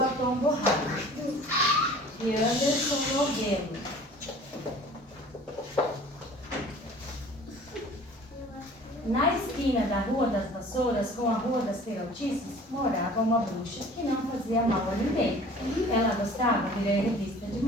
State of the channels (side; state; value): both; normal; correlation 0.47